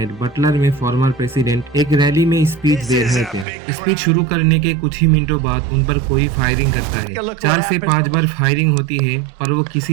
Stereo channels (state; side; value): drops out; left; at 3.5 s